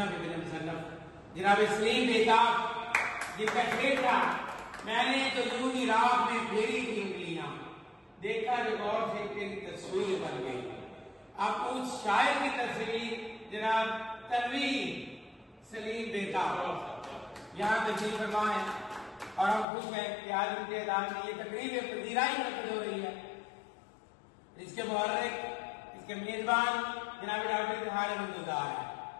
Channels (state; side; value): drops out; right; at 19.7 s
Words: ابن مصنف جناب سلیم بیتاب جن کا شعر تھا میں نے تو یوں ہی رات میں پھیری تھی انگلیاں، دیکھا جو غور سے تیری تصویر بن گئی۔ اب اس شاعر کی تصویر جناب تنویر سلیم بیتاب یہاں تشریف فرما ہے، اور ہم خوش ہیں کہ آج ان کے اعلان میں یہ تقریب پذیرائی منعقد ہو رہی ہے۔ اس کے محرک، اس کے میزبان جناب ڈاکٹر اظہار احمدزادہ ہے،